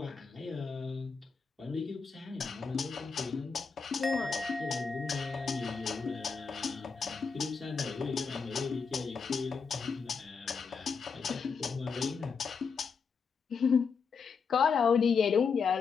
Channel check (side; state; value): right; quieter; 5.5 dB